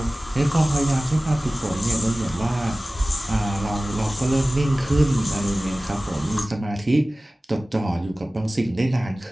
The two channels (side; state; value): both; normal; correlation 0.97